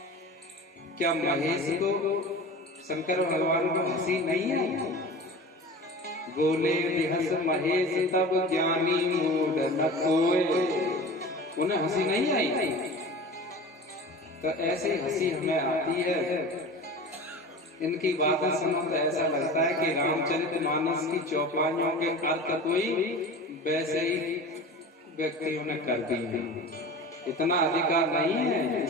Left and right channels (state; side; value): normal; both; correlation 0.35